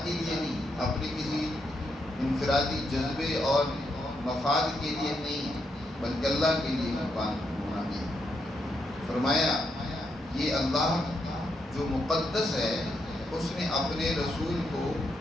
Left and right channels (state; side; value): normal; both; correlation 0.80